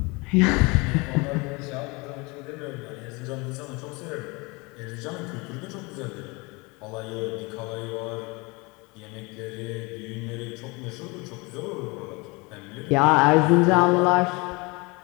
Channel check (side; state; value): right; quieter; 26.7 dB